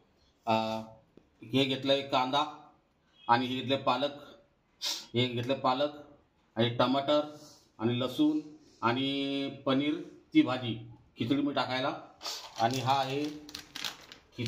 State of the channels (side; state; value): both; identical; correlation 1.00